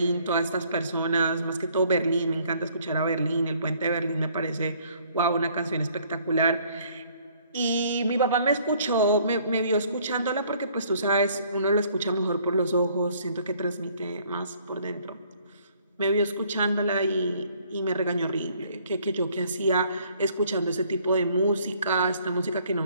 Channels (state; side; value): inverted; both; correlation -0.61